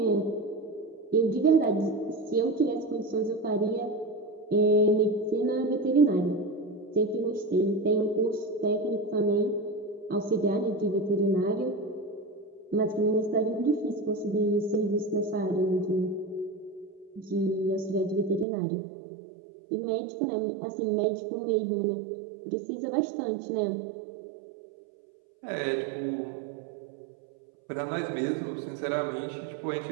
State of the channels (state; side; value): drops out; left; at 18.4 s